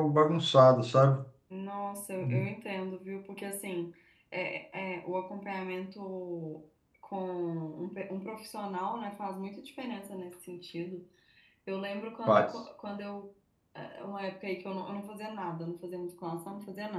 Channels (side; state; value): both; identical; correlation 1.00